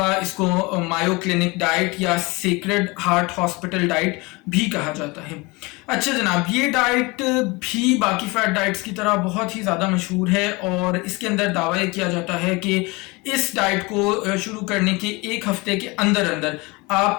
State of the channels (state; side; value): quieter; right; 25.2 dB